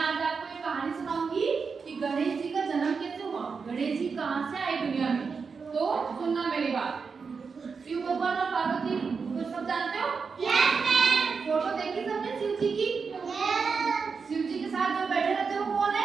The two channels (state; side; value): quieter; left; 5.3 dB